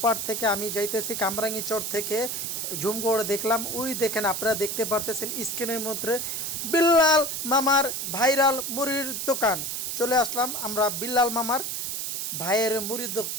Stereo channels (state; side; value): noise; right; hiss, 3 dB below the sound